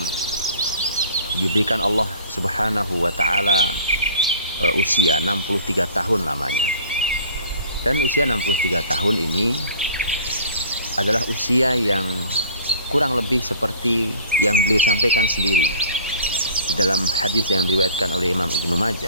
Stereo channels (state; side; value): inverted; both; correlation -0.47